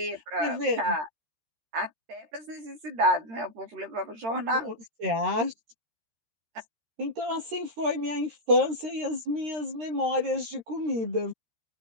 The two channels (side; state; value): left; late; 13 ms